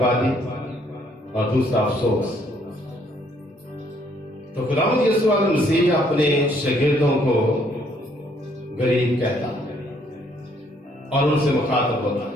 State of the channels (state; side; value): normal; both; correlation 0.67